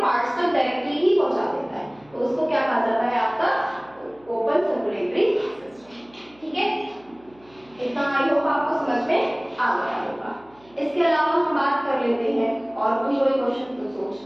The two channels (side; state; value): right; noise; hum, 29 dB below the sound